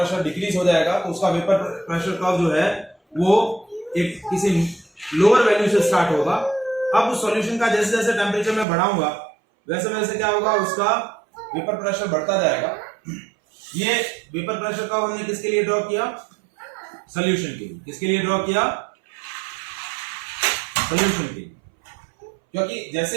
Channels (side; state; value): left; drops out; at 8.7 s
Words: डिक्रीज हो जाएगा. तो उसका वेपर प्रेशर कर्व जो है वो एक किसी लोअर वैल्यू से स्टार्ट होगा. अब उस सॉल्यूशन का जैसे जैसे टेम्परेचर में बढ़ाऊंगा वैसे वैसे क्या होगा? उसका वेपर प्रेशर बढ़ता जाएगा. ये वेपर प्रेशर कर्व हमने किसके लिए ड्रॉ किया? सॉल्यूशन के लिए. किसके लिए ड्रॉ किया? सॉल्यूशन के लिए. क्योंकि